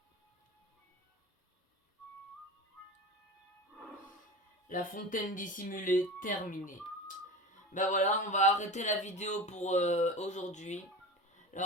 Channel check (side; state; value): both; normal; correlation 0.31